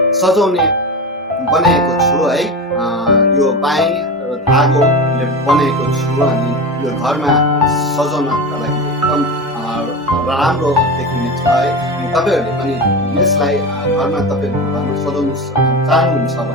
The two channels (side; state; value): both; normal; correlation 0.24